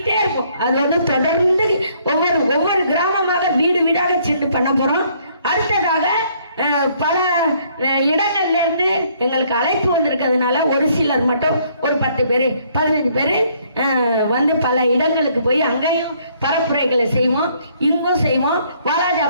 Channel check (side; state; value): both; inverted; correlation -0.65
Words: இருக்கும். அது வந்து தொடர்ந்து ஒவ்வொரு கிராமமாக வீடு வீடாக சென்று பண்ண போறோம். அடுத்ததாக பல இடங்கள்ல இருந்து எங்களுக்கு அழைப்பு வந்திருக்கிறதுனால ஒரு சிலர் மட்டும் ஒரு 10 பேர் 15 பேர் வந்து பல இடங்களுக்கு போய் அங்கேயும் பரப்புரைகளை செய்வோம், இங்கும் செய்வோம்.